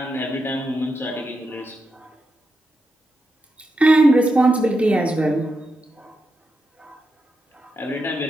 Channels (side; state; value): both; normal; correlation 0.86